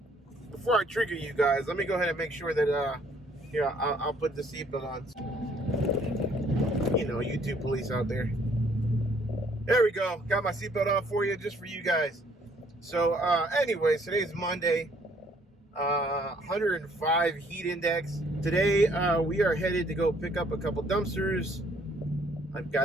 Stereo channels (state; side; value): normal; both; correlation 0.63